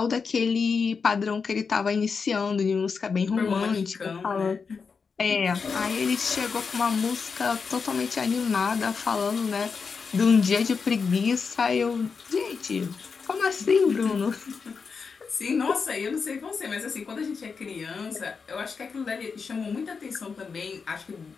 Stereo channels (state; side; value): quieter; right; 5.3 dB